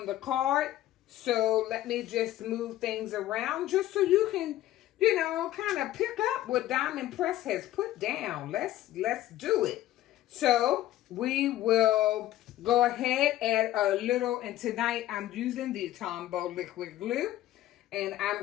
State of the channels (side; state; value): right; quieter; 14.3 dB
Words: the card. So let me just move things around just so you can, you know, kind of pick up what Diamond Press has put down. Let's do it. So we will go ahead, add a little, and tonight I'm using the TomBow liquid glue. And